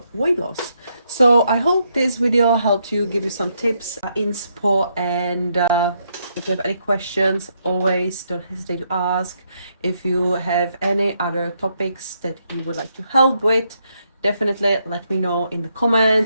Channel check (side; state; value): both; inverted; correlation -0.77